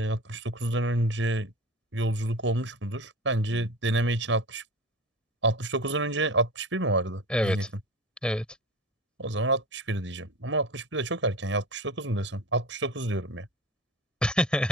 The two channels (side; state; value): both; normal; correlation 0.32